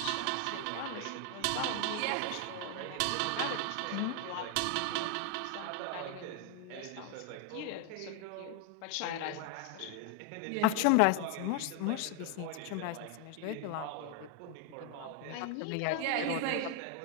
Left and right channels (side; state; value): both; different; correlation 0.01